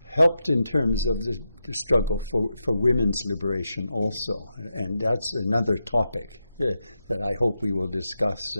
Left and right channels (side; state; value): both; inverted; correlation -0.87